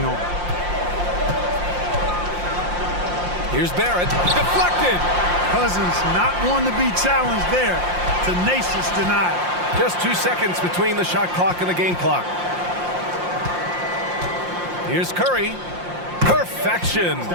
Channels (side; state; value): left; late; 5.7 ms